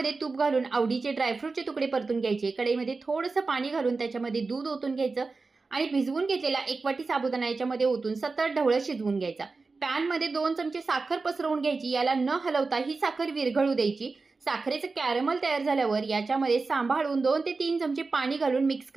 तूप घालून आवडीचे ड्रायफ्रूटचे तुकडे परतून घ्यायचे. कढईमध्ये थोडंसं पाणी घालून त्याच्यामध्ये दूध ओतून घ्यायचं आणि भिजवून घेतलेला 1 वाटी साबुदाणा याच्यामध्ये ओतून सतत ढवळत शिजवून घ्यायचा. पॅनमध्ये 2 चमचे साखर पसरवून घ्यायची. याला न हलवता ही साखर विरघळू द्यायची. साखरेचं कॅरमल तयार झाल्यावर याच्यामध्ये सांभाळून 2 ते 3 चमचे पाणी घालून मिक्स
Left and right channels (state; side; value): quieter; left; 4.0 dB